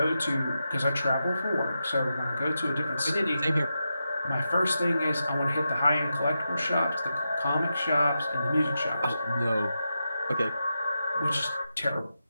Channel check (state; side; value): inverted; both; correlation -0.89